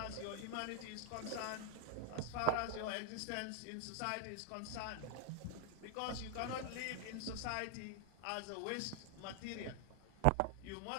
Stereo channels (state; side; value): different; both; correlation 0.00